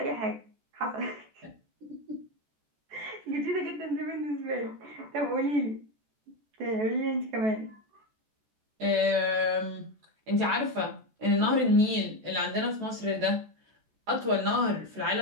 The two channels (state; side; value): late; left; 14 ms